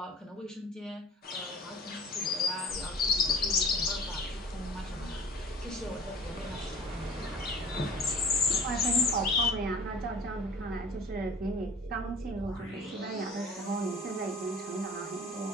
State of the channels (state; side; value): normal; both; correlation 0.46